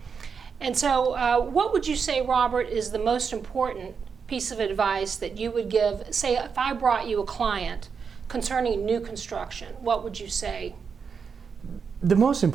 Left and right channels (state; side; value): quieter; left; 6.0 dB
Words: And so what would you say, Robert, is the most important piece of advice that you would give? Say, if I brought you a client concerning new construction, what would you say? The most